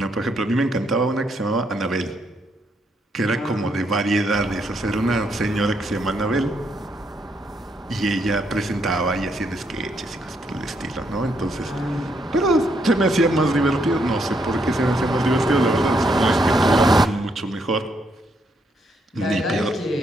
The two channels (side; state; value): both; normal; correlation 0.75